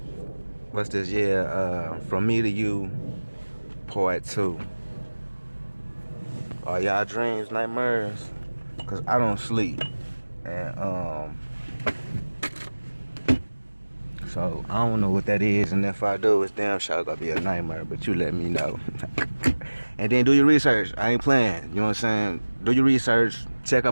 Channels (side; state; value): both; inverted; correlation -1.00